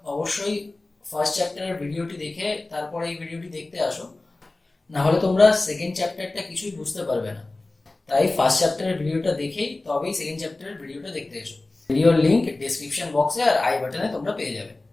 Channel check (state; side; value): quieter; right; 3.0 dB